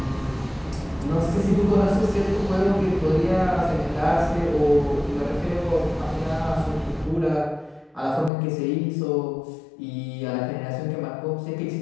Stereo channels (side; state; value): right; drops out; at 8.3 s